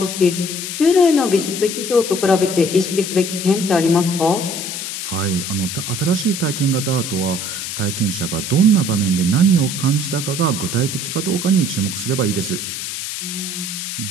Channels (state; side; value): noise; left; hiss, 5 dB below the sound